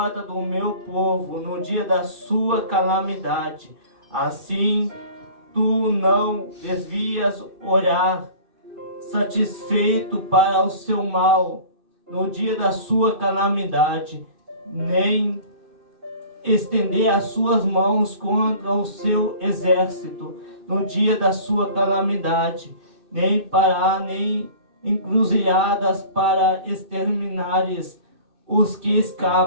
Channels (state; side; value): late; left; 2.6 ms